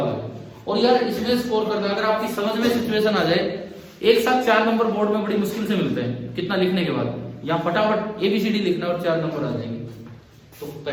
आ गया। और यार इसमें स्कोर करना, अगर आपकी समझ में सिचुएशन आ जाए, एक साथ 4 नंबर बोर्ड में बड़ी मुश्किल से मिलते हैं। कितना लिखने के बाद यहाँ फटाफट ABCD लिखना और 4 नंबर आ जाएंगे। तो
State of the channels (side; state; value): both; identical; correlation 1.00